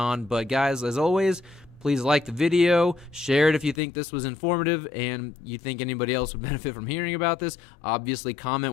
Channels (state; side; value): drops out; right; at 3.8 s